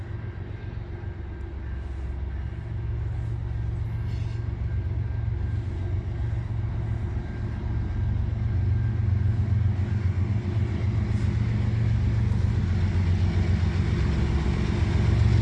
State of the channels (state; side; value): identical; both; correlation 1.00